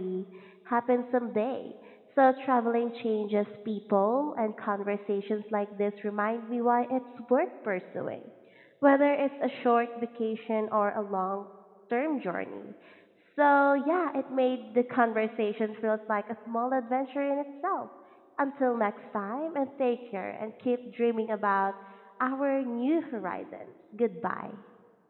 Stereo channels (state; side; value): identical; both; correlation 1.00